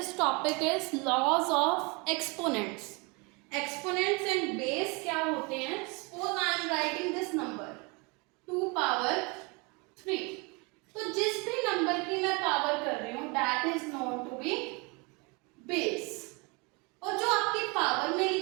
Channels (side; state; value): left; quieter; 29.4 dB